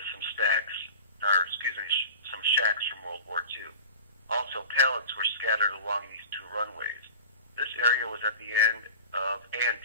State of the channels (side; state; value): both; inverted; correlation -0.37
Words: some some shacks from World War II. Also, pallets were scattered along these two runways. This area was at the end of and